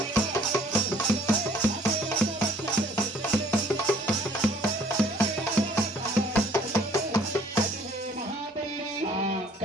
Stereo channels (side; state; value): both; normal; correlation 0.58